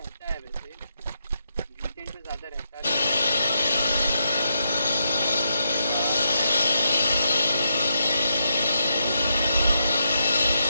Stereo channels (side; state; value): both; inverted; correlation -0.81